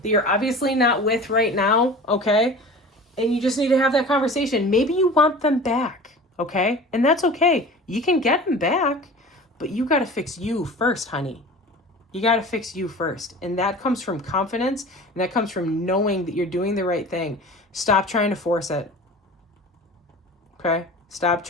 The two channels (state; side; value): normal; both; correlation 0.38